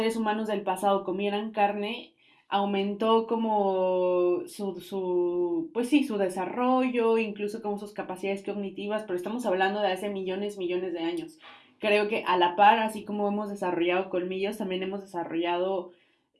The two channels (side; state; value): both; identical; correlation 1.00